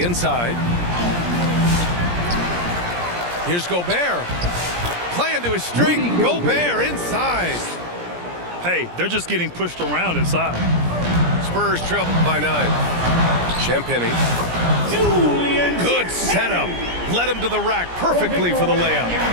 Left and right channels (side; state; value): left; late; 17 ms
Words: inside. Here's Gobert. Playing to his strength. Gobert inside. Hey, they're just getting pushed around inside. Spurs trail by 9. Champagny. Good setup. Led him to the rack perfectly for the layup.